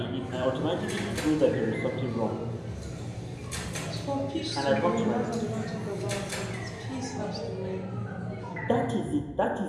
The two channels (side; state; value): both; identical; correlation 1.00